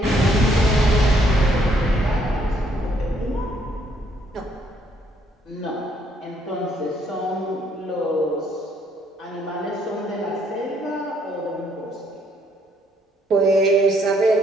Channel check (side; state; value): both; normal; correlation 0.68